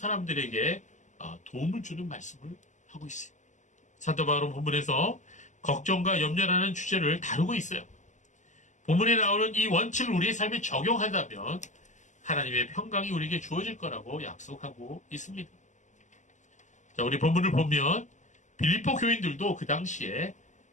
도움을 주는 말씀을 하고 있어요. 사도 바울은 본문에서 걱정과 염려라는 주제를 다루고 있어요. 본문에 나오는 이 원칙을 우리의 삶에 적용한다면 하나님의 평강이 우리에게 주어질 거라고 약속하고 있습니다. 자, 우리 본문을 보면 빌립보 교인들도 그 당시에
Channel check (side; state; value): right; late; 0.35 ms